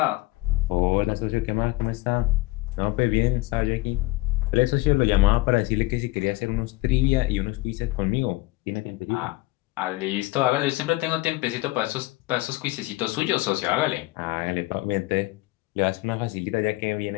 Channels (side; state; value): right; quieter; 19.7 dB